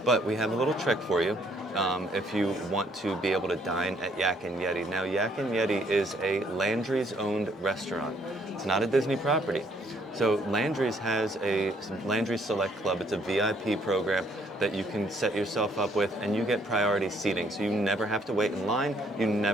But we have a little trick for you. If you want to be able to dine at Yak Yeti. Now, Yak Yeti is a Landry's owned restaurant. It's not a Disney property. So Landry's has a Landry's Select Club. It's a VIP program that you can set yourself up with, and you get priority seating. So you never have to wait in line. You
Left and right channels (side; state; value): both; normal; correlation 0.66